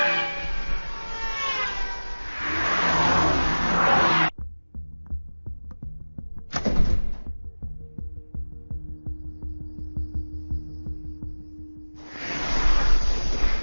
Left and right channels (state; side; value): inverted; both; correlation -1.00